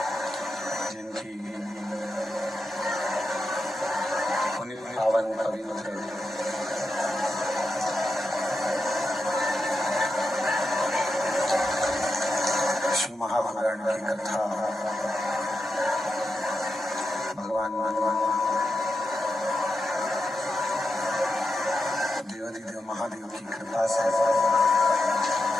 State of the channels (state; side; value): normal; both; correlation 0.87